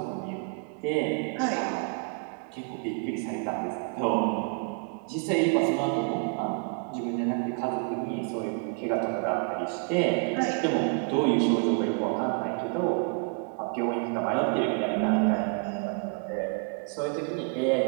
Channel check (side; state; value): left; quieter; 36.9 dB